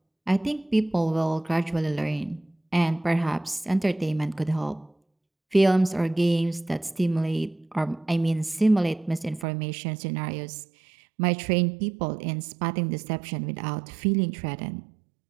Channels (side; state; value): left; drops out; at 9.5 s